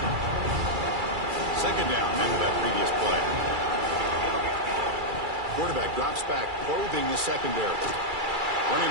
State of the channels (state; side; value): late; left; 2.3 ms